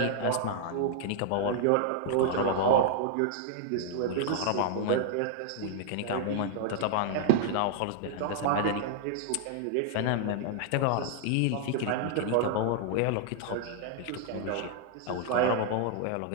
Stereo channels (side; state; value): both; different; correlation -0.01